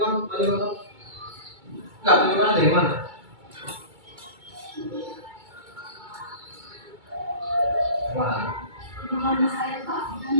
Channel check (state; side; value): late; left; 2.2 ms